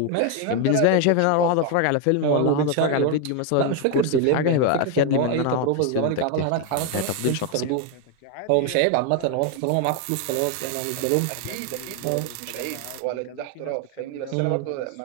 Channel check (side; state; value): both; different; correlation 0.01